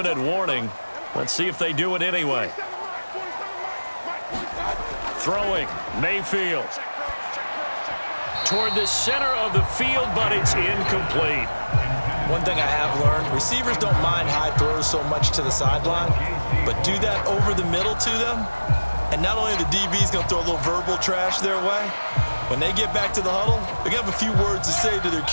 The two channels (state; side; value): inverted; both; correlation -1.00